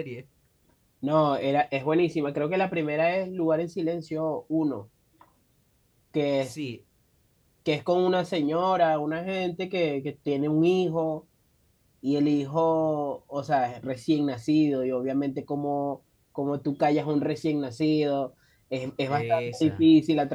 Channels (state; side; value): identical; both; correlation 1.00